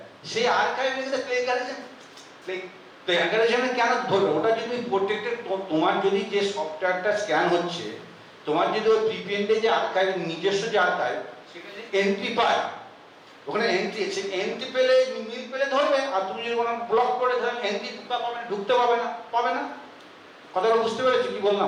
সেই আর্কাইভে কিন্তু প্লেগারিজমে কেন ধরবে? ওটা যদি প্রত্যেকটা তোমার যদি যে সফটওয়্যারটা স্ক্যান হচ্ছে, তোমার যদি ওই প্রিপেন্ডে যে আর্কাইভ, নিজস্ব যে আর্কাইভ, সেখানে এন্ট্রি পায়, ওখানে এন্ট্রি, সে এন্ট্রি পেলে মিল পেলে ধরবে। আর তুমি যদি কোনো ব্লক করে ধরেন এন্ট্রি ঢুকতে পাবে না। কথাটা বুঝতে পেরেছি কি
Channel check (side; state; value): both; identical; correlation 1.00